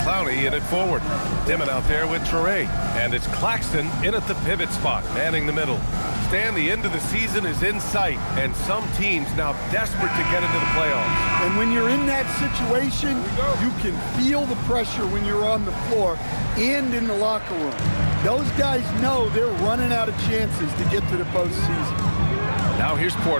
in at forward. Dimon out there with Traore. And it's Claxton in at the pivot spot, manning the middle. Stan, the end of the season is in sight, and some teams now desperate to get into the playoffs. And when you're in that situation, you can feel the pressure when you're on the floor and in the locker room. Those guys know they're running out of chances to get to the postseason. Now here's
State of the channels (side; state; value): both; inverted; correlation -1.00